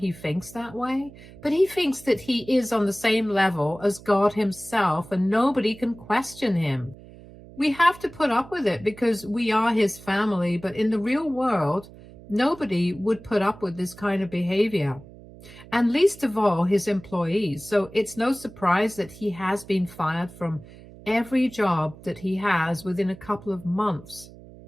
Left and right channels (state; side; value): noise; right; hum, 19 dB below the sound